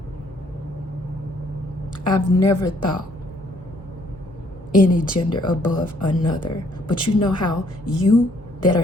I've never thought any gender above another. But you know how you that are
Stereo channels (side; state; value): both; normal; correlation 0.65